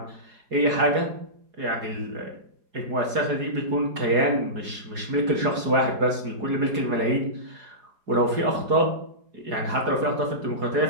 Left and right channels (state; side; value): late; left; 4.8 ms